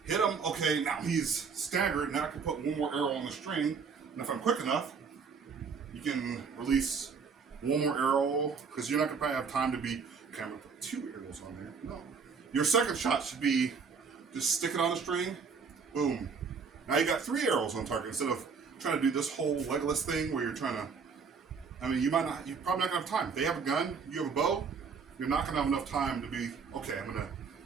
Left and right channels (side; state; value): left; quieter; 5.6 dB